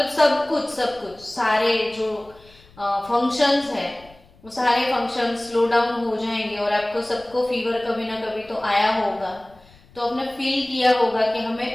सब कुछ सारे जो फंक्शंस है वो सारे फंक्शन स्लो डाउन हो जाएंगे। और आपको सबको फीवर कभी ना कभी तो आया होगा, तो आपने फील किया होगा कि हमें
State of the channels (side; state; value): left; noise; rumble, 27 dB below the sound